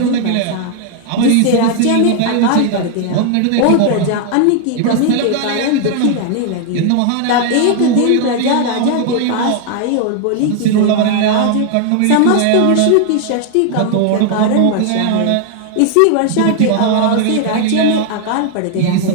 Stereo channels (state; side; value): different; both; correlation 0.00